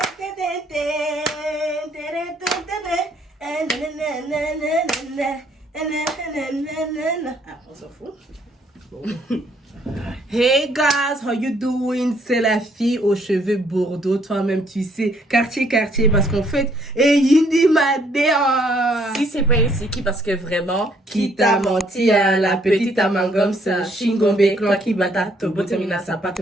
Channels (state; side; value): normal; both; correlation 0.66